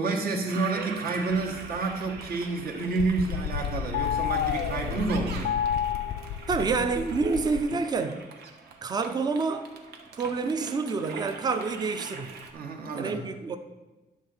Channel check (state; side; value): normal; both; correlation 0.44